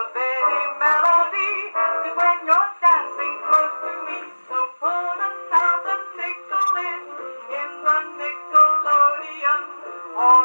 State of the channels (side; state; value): both; inverted; correlation -1.00